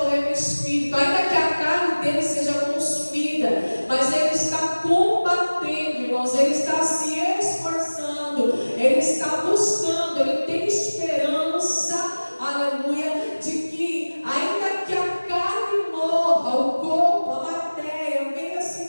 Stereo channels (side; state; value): both; inverted; correlation -1.00